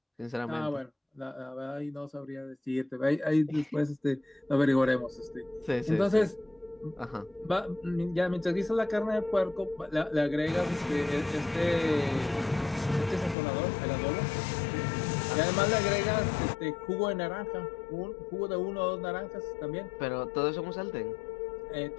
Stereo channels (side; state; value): right; drops out; at 13.4 s